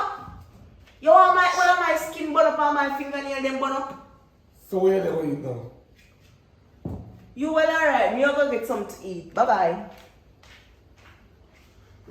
You want one of my skin burn up on my fingernail them burn up? So where they will eat now? You well alright, me go get something to eat. Bye bye.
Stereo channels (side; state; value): both; identical; correlation 1.00